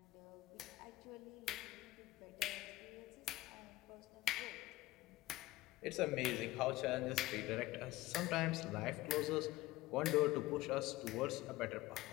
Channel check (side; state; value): right; quieter; 17.8 dB